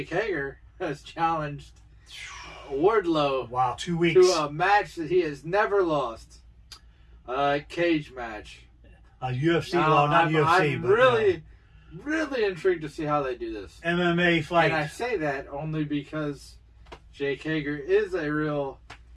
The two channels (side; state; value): both; identical; correlation 1.00